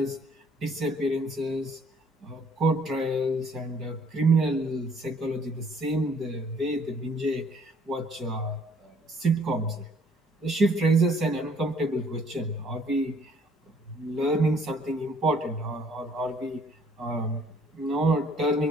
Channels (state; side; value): normal; both; correlation 0.61